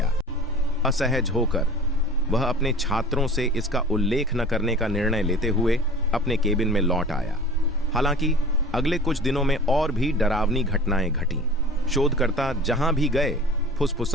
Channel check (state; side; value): normal; both; correlation 0.41